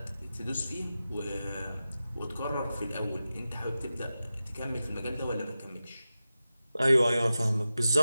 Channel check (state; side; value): inverted; both; correlation -0.93